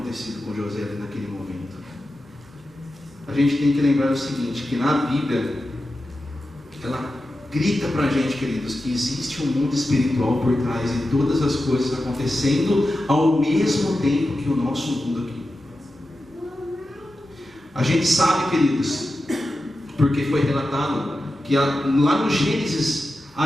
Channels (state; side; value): normal; both; correlation 0.92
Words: com José ali naquele momento. A gente tem que lembrar o seguinte: que na Bíblia ela grita para a gente, queridos, que existe um mundo espiritual por trás de todas as coisas acontecendo ao mesmo tempo que o nosso mundo aqui. A gente sabe, queridos, porque foi relatado que lá no Gênesis